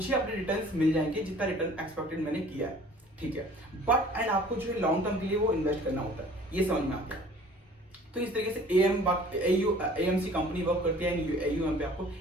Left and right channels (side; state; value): both; normal; correlation 0.50